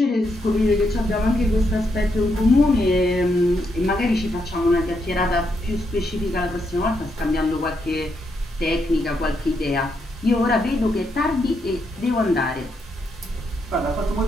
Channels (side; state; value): both; normal; correlation 0.79